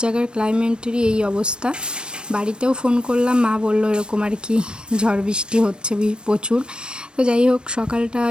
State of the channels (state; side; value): late; left; 0.053 ms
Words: জায়গার ক্লাইমেটেরই এই অবস্থা। বাড়িতেও ফোন করলাম, মা বললো এরকম আর কি ঝড় বৃষ্টি হচ্ছে প্রচুর। তো যাই হোক, সকালটা